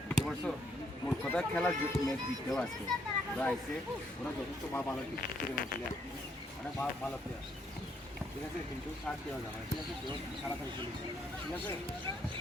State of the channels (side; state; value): both; normal; correlation 0.72